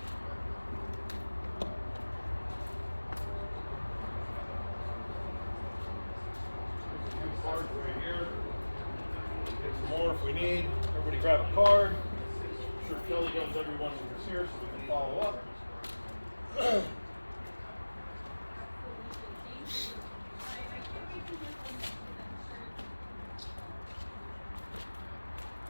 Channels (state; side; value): inverted; both; correlation -1.00